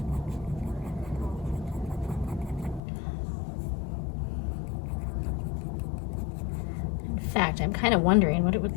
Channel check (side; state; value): right; drops out; at 2.8 s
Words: In fact, I'm kind of wondering what it